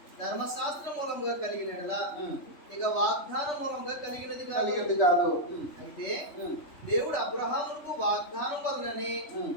ధర్మశాస్త్రం మూలంగా కలిగినదా ఇక వాగ్దాన మూలంగా కలిగినది కాదు. అయితే దేవుడు అబ్రహాముకు వాగ్దానం వలననే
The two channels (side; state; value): right; late; 3.4 ms